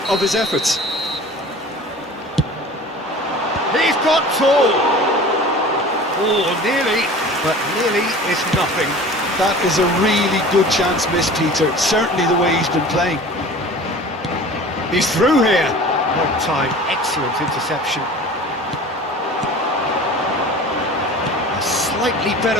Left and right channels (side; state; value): both; normal; correlation 0.41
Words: of his efforts. He's got tall. Oh, nearly, but nearly is nothing. That is a really good chance missed, Peter. Certainly the way he's been playing. He's through here. Long time, excellent interception. A slightly